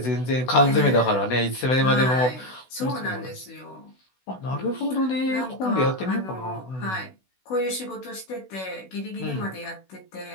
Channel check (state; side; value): late; right; 16 ms